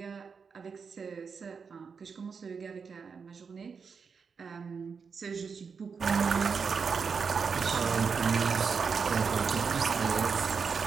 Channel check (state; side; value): quieter; left; 5.7 dB